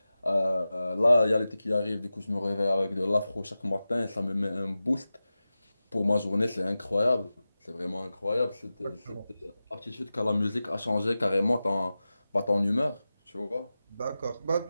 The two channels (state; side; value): inverted; both; correlation -0.94